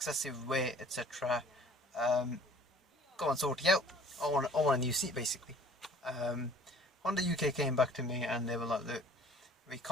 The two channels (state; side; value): normal; both; correlation 0.51